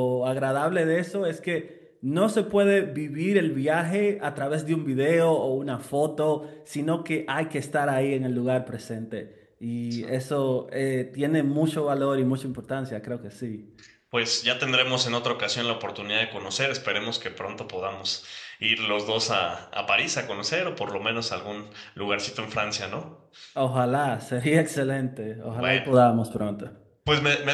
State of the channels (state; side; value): identical; both; correlation 1.00